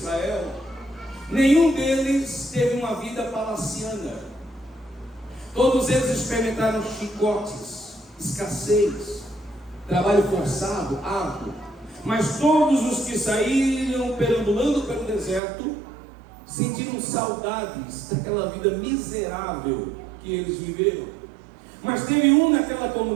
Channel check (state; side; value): drops out; left; at 15.4 s